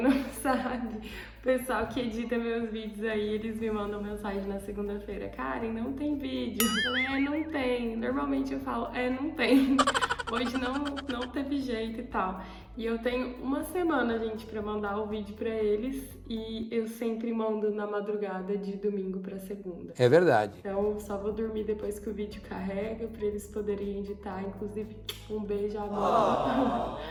não sabe, o pessoal que edita meus vídeos aí, eles me mandam mensagem na segunda-feira: Karen, não tem vídeo. Eu falei, não tem. Normalmente eu falo, não tem. Hoje não teve jeito e tal. E eu tenho uma semana, gente, pra mandar o vídeo pra eles. E eu sempre mando na madrugada de domingo pra segunda. É verdade. Então só vou dormir depois que o vídeo carrega pra eles poderem editar. Inclusive, um beijo, amor.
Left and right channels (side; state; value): both; identical; correlation 1.00